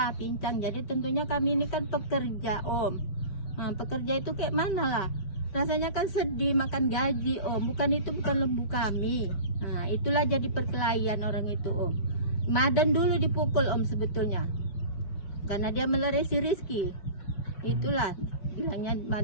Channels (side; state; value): right; late; 5.1 ms